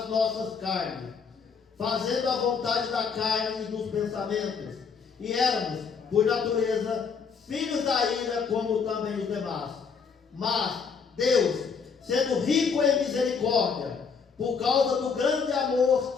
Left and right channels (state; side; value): quieter; right; 5.8 dB